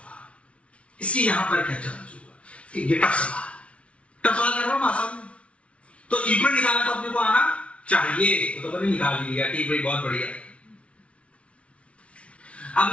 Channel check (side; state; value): right; late; 0.062 ms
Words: इसके यहां पर क्या चार्ज होगा। ये टफ सवाल कर रहा हूं आसान में। तो इक्वल निकालना तो अपने को आना चाहिए, तो मैंने निकाल लिया। ठीक भाई, बहुत बढ़िया।